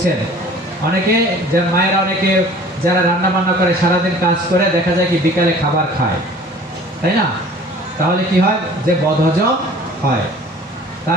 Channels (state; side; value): normal; both; correlation 0.48